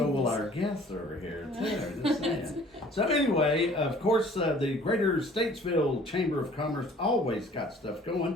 will our guests over here, too. Just saying. So anyway, of course, the Greater Statesville Chamber of Commerce always got stuff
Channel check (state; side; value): normal; both; correlation 0.52